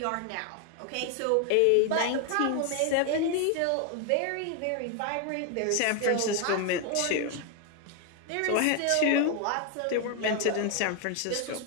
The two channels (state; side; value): different; both; correlation 0.01